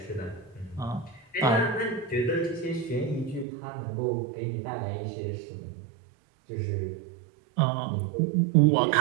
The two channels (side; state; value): left; drops out; at 3.5 s